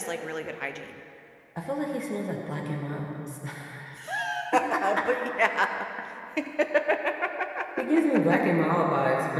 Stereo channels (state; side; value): identical; both; correlation 1.00